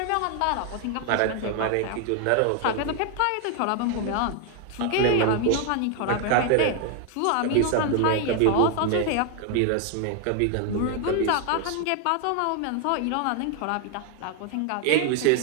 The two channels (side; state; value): both; different; correlation 0.00